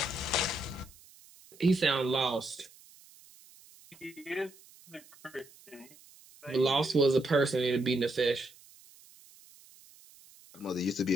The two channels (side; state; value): right; noise; hiss, 24 dB below the sound